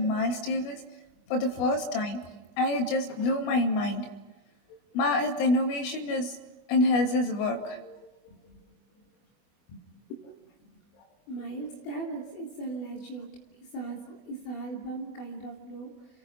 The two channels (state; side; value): late; right; 25 ms